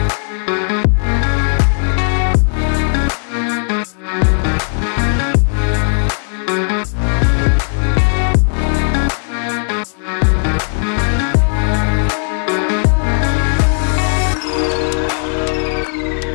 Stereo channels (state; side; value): silent; right; digital silence